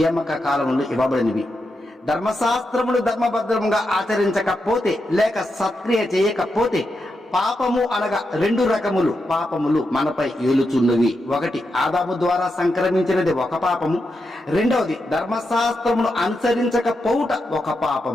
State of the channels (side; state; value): both; normal; correlation 0.86